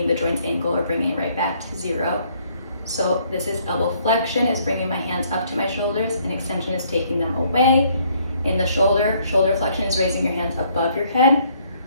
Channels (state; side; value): inverted; both; correlation -0.65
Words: the joint's angle or bringing it right back to zero. So this is elbow flexion, is bringing my hands up to my shoulders, and extension is taking them away. In the shoulder flexion is raising your hands above your head,